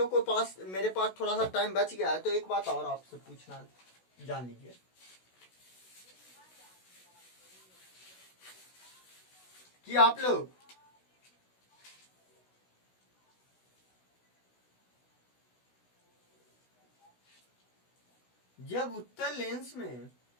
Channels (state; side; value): late; right; 16 ms